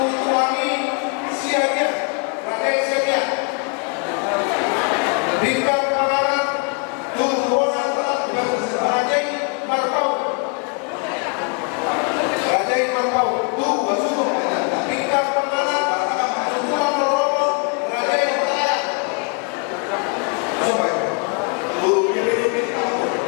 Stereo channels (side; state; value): right; quieter; 34.3 dB